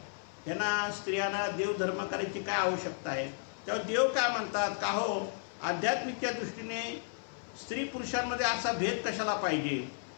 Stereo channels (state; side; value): silent; right; 55 dB below the other